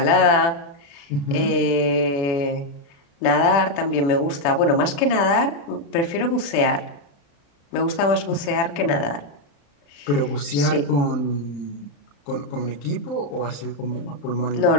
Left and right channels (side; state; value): right; late; 36 ms